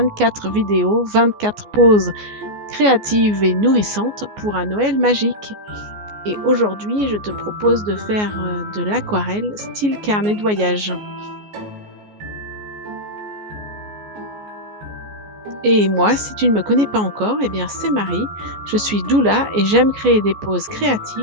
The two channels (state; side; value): late; left; 14 ms